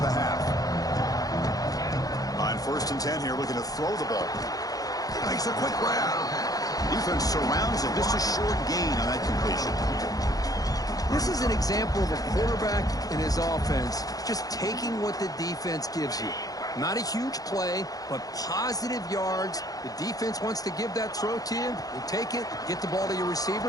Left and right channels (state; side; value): late; right; 0.18 ms